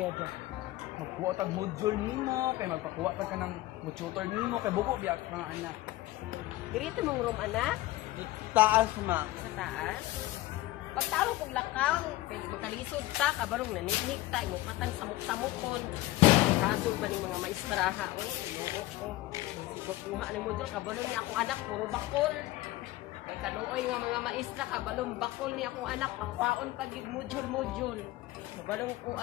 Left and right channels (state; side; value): quieter; right; 17.1 dB